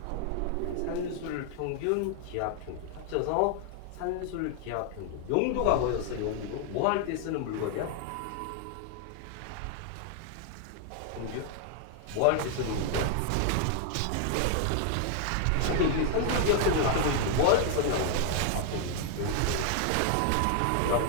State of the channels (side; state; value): both; different; correlation 0.00